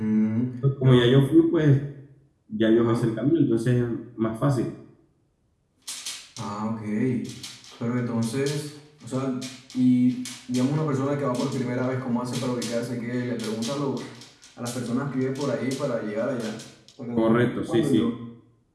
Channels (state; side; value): identical; both; correlation 1.00